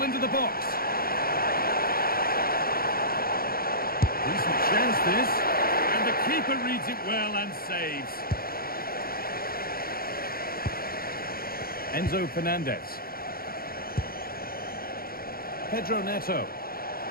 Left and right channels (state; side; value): late; right; 0.43 ms